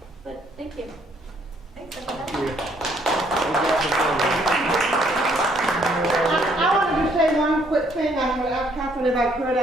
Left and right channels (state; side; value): normal; both; correlation 0.66